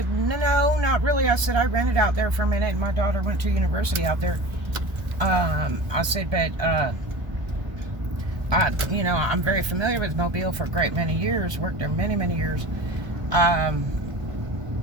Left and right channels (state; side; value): late; left; 1.0 ms